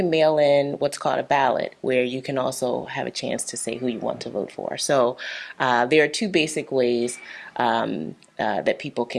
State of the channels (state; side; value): identical; both; correlation 1.00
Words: mail in what's called a ballot, where you can also have a chance to say who you want to vote for. So there are two basic ways that people